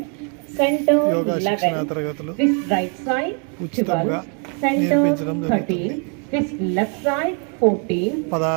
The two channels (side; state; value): left; quieter; 39.0 dB